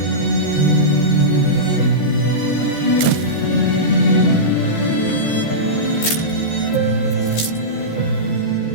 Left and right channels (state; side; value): late; right; 14 ms